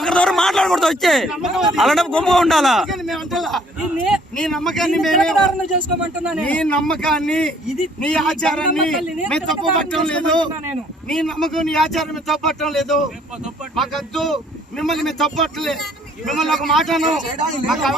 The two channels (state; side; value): normal; both; correlation 0.60